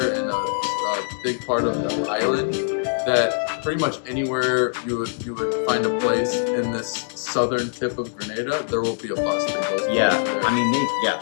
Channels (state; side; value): silent; right; digital silence